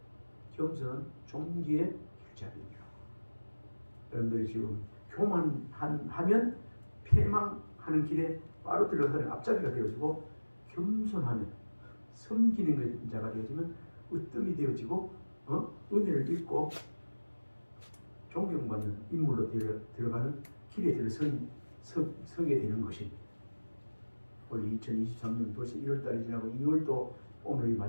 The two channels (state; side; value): inverted; both; correlation -1.00